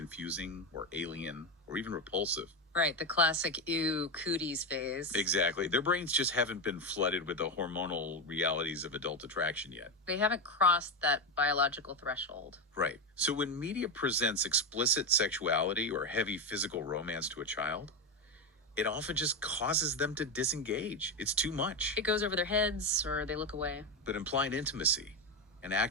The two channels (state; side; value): normal; both; correlation 0.12